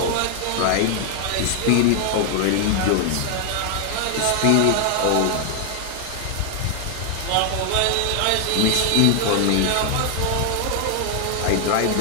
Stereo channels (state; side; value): different; both; correlation 0.00